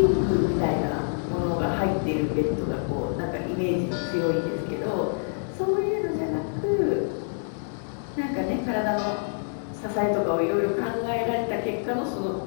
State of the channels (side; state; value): right; silent; 61 dB below the other